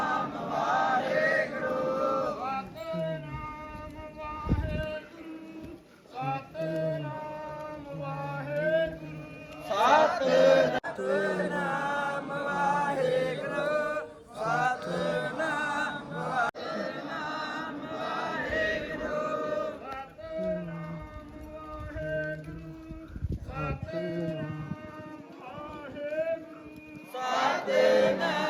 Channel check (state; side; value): identical; both; correlation 1.00